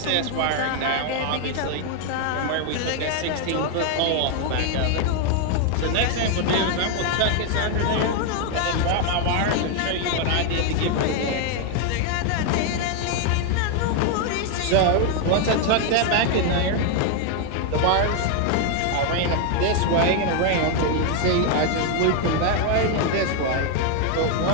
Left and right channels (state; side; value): different; both; correlation 0.01